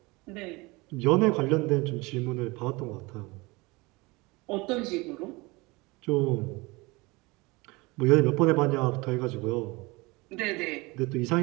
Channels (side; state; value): left; quieter; 24.2 dB